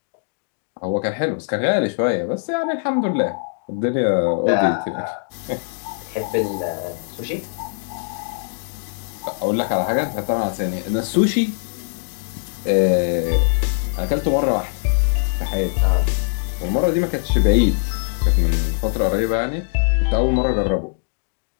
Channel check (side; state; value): right; silent; digital silence